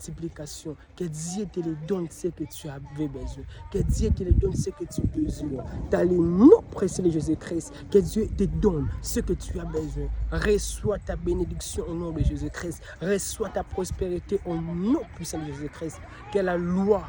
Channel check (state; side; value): identical; both; correlation 1.00